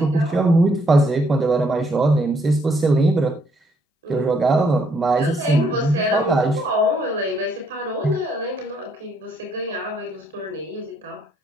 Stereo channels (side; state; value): both; normal; correlation 0.70